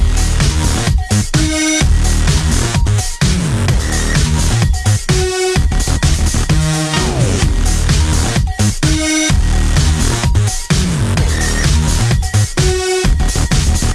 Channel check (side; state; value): both; identical; correlation 1.00